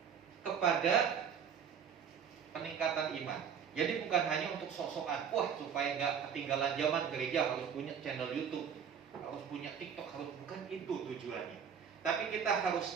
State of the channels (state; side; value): quieter; left; 7.5 dB